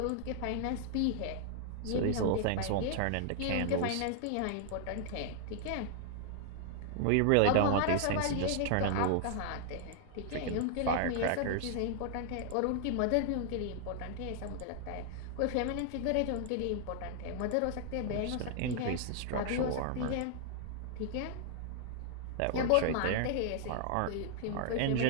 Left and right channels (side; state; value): both; different; correlation -0.01